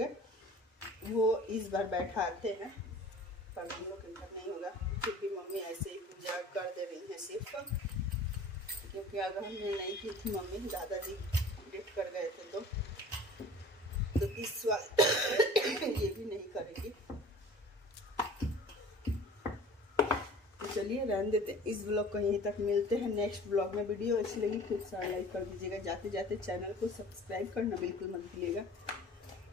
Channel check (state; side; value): normal; both; correlation 0.44